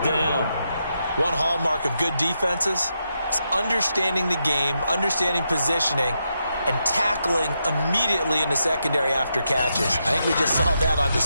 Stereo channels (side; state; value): both; inverted; correlation -0.83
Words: down. One hallmark of good defenses is understanding the game, understanding positioning, and tackling immediately in the secondary after catches. I think we just saw that on